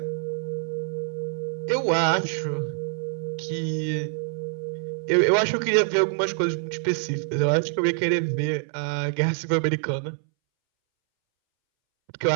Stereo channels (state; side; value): silent; left; 61 dB below the other